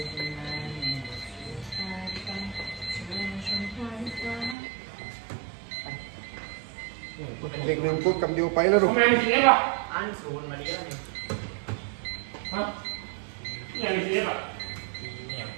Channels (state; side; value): drops out; left; at 4.5 s